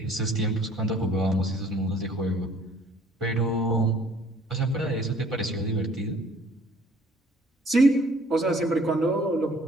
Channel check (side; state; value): both; normal; correlation 0.56